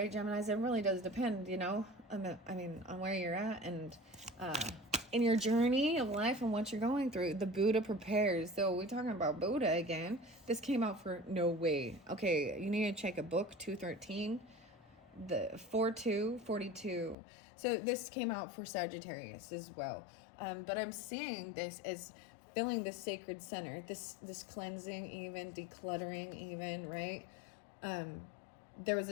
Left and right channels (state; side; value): drops out; right; at 17.2 s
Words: Geminis? It really does depend, you know, I mean, on where you're at and in your journey of life and what you're going through. The Buddha prepares. So we're talking about Buddha again. This came out for no way. Okay, you need to check a book, 213, the 4242. So this came out for Sagittarius as well. But I'm seeing this as filling the sacred center, this cleansing, even decluttering, even, right? There was